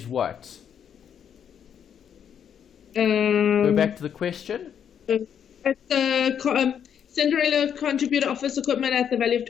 what? Go back to the question. At the Cinderella contributor office equipment at the value of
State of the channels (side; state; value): right; quieter; 8.4 dB